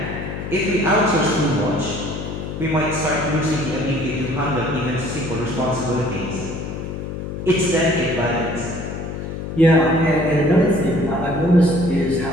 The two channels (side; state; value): left; noise; hum, 7 dB below the sound